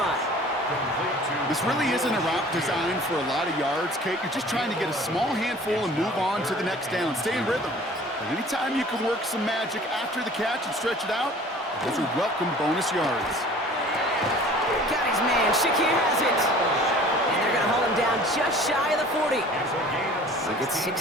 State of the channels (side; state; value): both; normal; correlation 0.47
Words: This really isn't a route designed for a lot of yards, Kate. You're just trying to get a small handful and move on to the next down. Stay in rhythm. And anytime you can work some magic after the catch and stretch it out, those are welcome bonus yards. Got his man. Shakir has it. And they're going to hold him down just shy of the 40. He gets